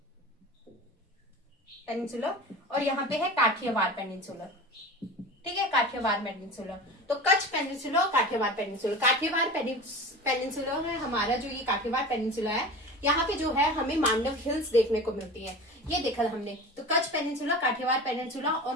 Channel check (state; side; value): normal; both; correlation 0.34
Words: और यहाँ पे है काठियावाड़ पेनिनसुला, ठीक है, काठियावाड़ पेनिनसुला. तो कच्छ पेनिनसुला और काठियावाड़ पेनिनसुला. काठियावाड़ पेनिनसुला है हमारा, जो ये काठियावाड़ पेनिनसुला है, यहाँ पे जो है हमें मांडव हिल्स देखने को मिलती है. ये देखा हमने, तो कच्छ पेनिनसुला, काठियावाड़ पेनिनसुला और